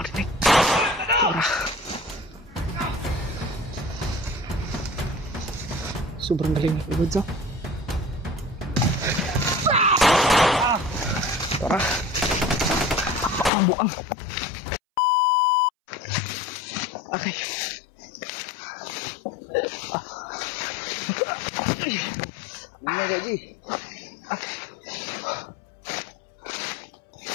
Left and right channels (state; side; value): drops out; right; at 13.5 s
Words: Wala. Sobrang galing ni Kuya Bats, oh. Tara. Buang. Okay. Ini jadi. Okay.